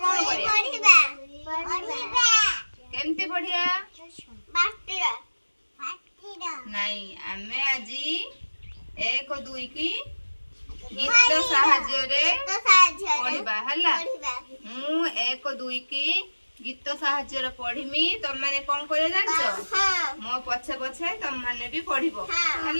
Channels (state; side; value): inverted; both; correlation -1.00